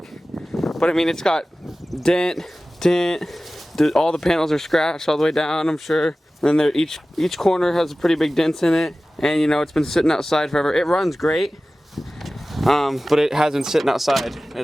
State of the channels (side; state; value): both; normal; correlation 0.96